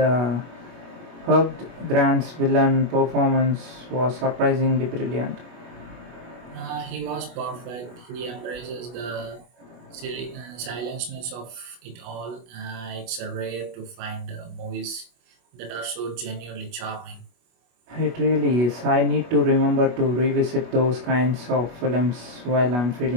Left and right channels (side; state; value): left; late; 25 ms